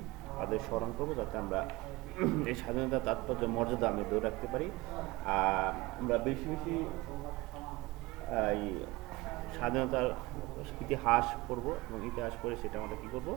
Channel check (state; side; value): quieter; left; 20.9 dB